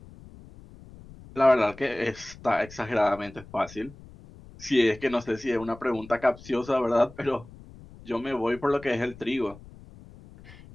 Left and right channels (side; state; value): left; noise; rumble, 20 dB below the sound